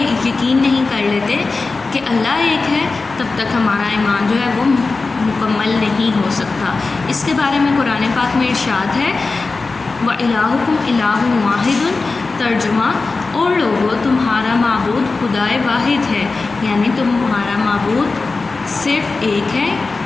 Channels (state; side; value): quieter; right; 3.8 dB